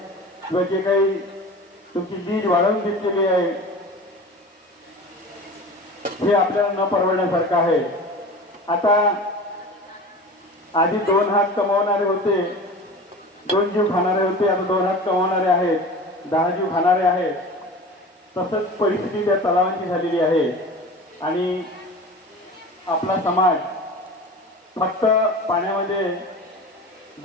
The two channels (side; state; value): both; normal; correlation 0.35